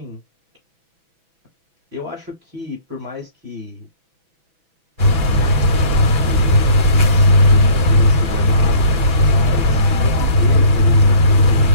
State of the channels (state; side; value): late; left; 6.1 ms